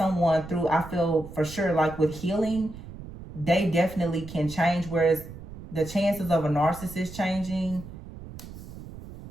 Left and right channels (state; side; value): noise; right; rumble, 14 dB below the sound